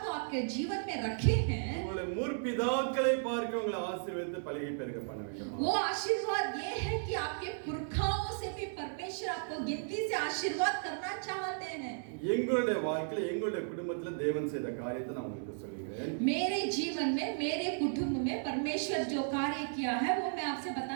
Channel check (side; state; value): left; silent; 55 dB below the other